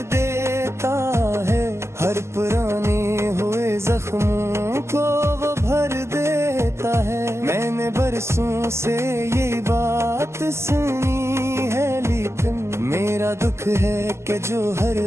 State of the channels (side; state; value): left; late; 0.13 ms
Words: देता है, हर पुराने हुए जख्मों को वो भर देता है। मैंने बरसों से यही बात सुनी है, लेकिन मेरा दुख है कि जो हर